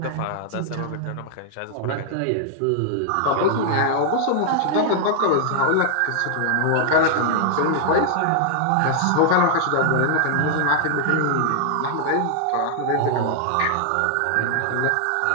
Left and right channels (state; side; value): different; both; correlation -0.01